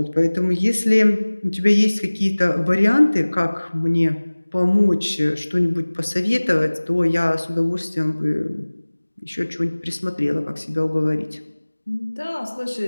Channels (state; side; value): inverted; both; correlation -1.00